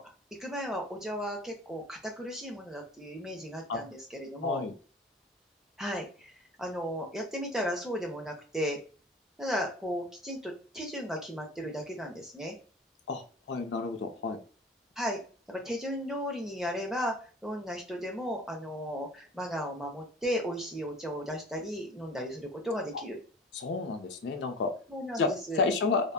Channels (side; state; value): both; normal; correlation 0.38